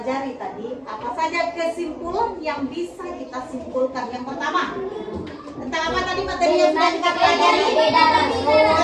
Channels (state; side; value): identical; both; correlation 1.00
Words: tadi. Apa saja kesimpulan yang bisa kita simpulkan? Yang pertama, tentang apa tadi materi yang sudah kita pelajari?